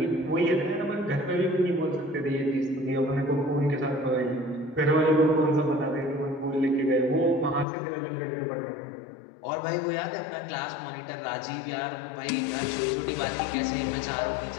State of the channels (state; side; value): drops out; right; at 7.7 s